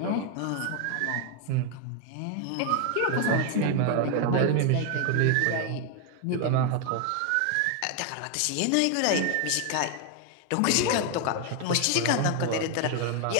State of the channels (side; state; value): both; different; correlation 0.00